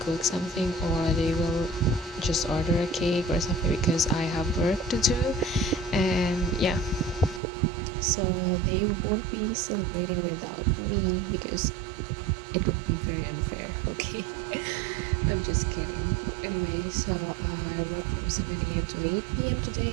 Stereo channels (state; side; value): drops out; left; at 7.4 s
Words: cook something or they will just order a cake or something because I have work to do. And yeah, so they won't be celebrating without me because it would be very unfair. Okay. I'm just kidding. Anyway, so I work from 7 a.m. to 8 p.m.